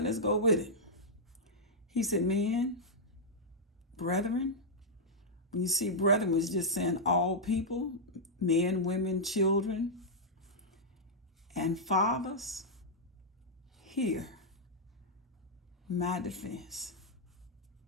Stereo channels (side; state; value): both; normal; correlation -0.06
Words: go with it. He said, men, brethren. When you see brethren, it's just saying all people, men, women, children, and fathers, hear my defense.